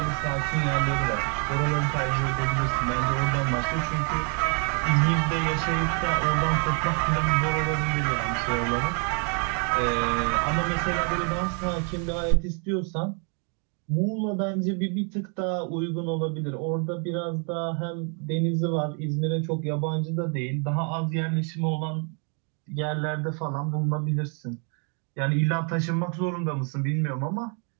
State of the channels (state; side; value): quieter; left; 39.2 dB